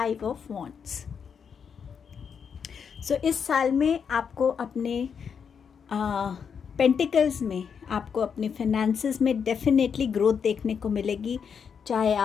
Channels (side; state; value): right; quieter; 6.8 dB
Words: of Wands. So इस साल में आपको अपने पेंटिकल्स में आपको अपने फिनेंसेस में डेफिनेटली ग्रोथ देखने को मिलेगी। चाहे